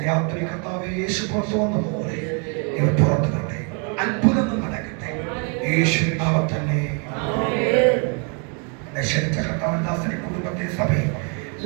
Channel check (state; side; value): quieter; left; 37.4 dB